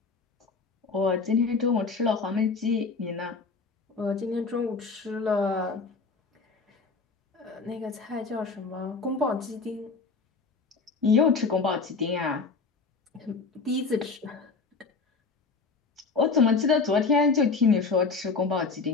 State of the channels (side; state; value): right; quieter; 4.5 dB